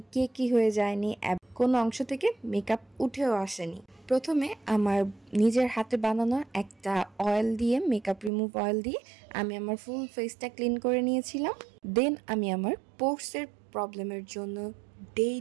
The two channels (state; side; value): drops out; left; at 8.3 s